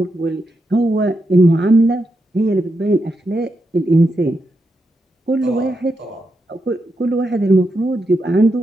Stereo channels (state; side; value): normal; both; correlation 0.85